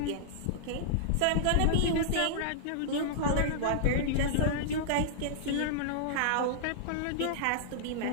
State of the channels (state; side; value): different; both; correlation -0.02